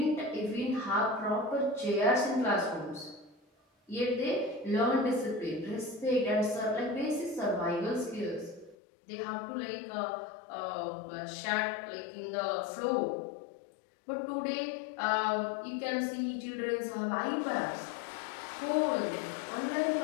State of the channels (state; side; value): drops out; right; at 8.8 s